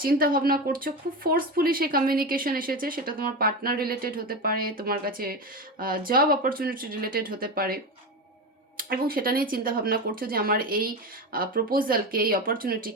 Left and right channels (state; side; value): normal; both; correlation 0.20